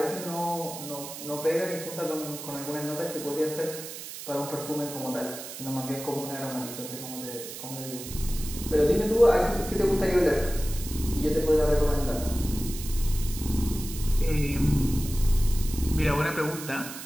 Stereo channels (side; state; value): right; noise; hiss, 10 dB below the sound